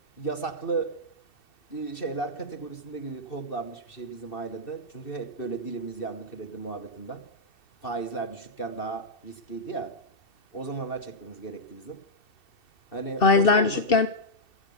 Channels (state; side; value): late; right; 2.7 ms